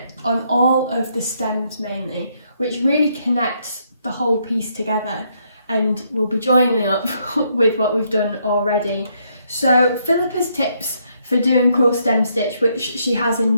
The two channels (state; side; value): inverted; both; correlation -0.73